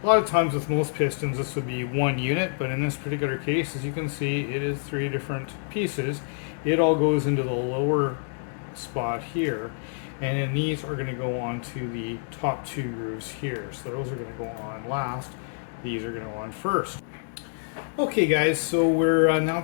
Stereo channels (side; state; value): right; silent; digital silence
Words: A lot of times with most pistons this would be one unit, but in this particular case, as you can see, it is three different pieces. It all goes into the lower spot here, and then these are going to go on to the top two grooves here. So those are going to go on last. These are going to go on first. Okay guys, so we're now